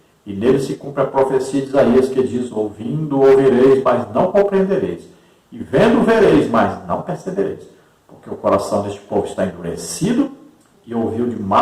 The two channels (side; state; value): both; identical; correlation 1.00